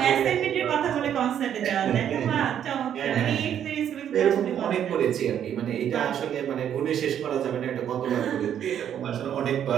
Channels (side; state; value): left; quieter; 9.6 dB